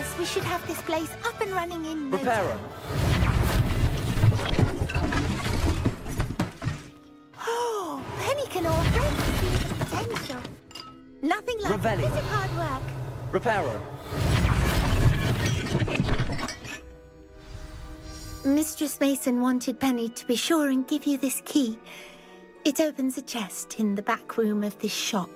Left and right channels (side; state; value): both; identical; correlation 1.00